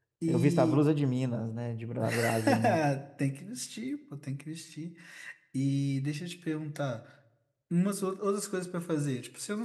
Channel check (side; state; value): both; identical; correlation 1.00